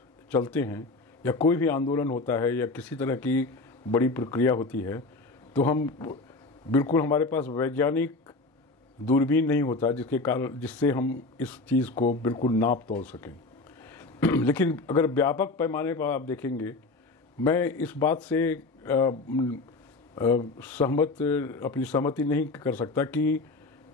चलते हैं या कोई भी आंदोलन होता है या किसी तरह की बड़ी प्रक्रिया होती है, तो हम बिल्कुल, हमारे पास वैज्ञानिक दूरबीन नहीं होता जिससे हम इस चीज़ को बिल्कुल नाप तोल सकें। लेकिन अगर व्यापक पैमाने पर आप देखेंगे, मैं इस बात से अपनी सहमति नहीं कर सकता कि,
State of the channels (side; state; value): right; quieter; 3.4 dB